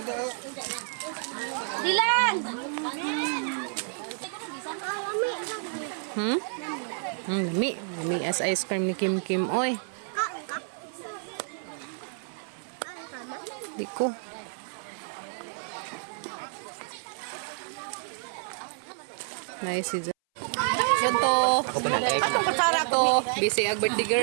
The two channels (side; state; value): left; silent; 58 dB below the other